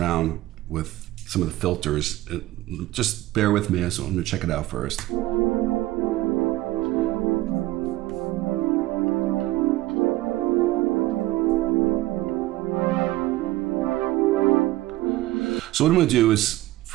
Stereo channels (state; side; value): quieter; left; 17.4 dB